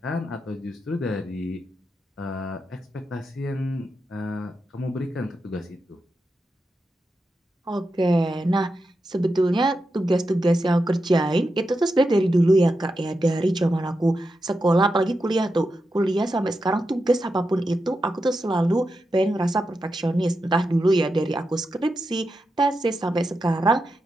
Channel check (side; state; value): both; normal; correlation 0.88